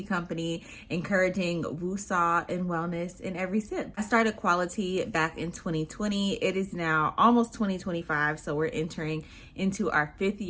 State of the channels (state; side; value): identical; both; correlation 1.00